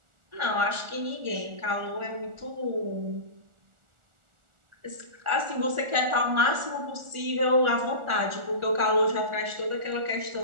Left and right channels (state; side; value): late; left; 1.4 ms